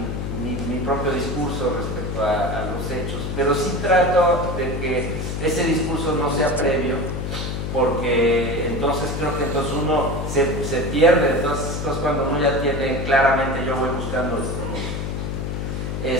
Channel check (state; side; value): noise; left; hum, 3 dB below the sound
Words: mi propio discurso respecto a los hechos, pero sí trato de que ese discurso no sea previo, porque entonces creo que entonces uno se pierde. Entonces cuando uno ya tiene claramente yo voy buscando esto, ¿no?